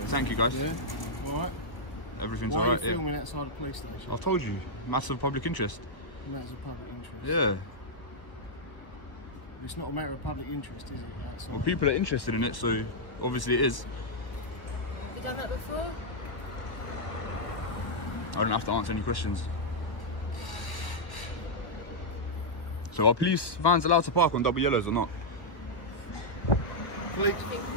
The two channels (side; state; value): right; late; 1.4 ms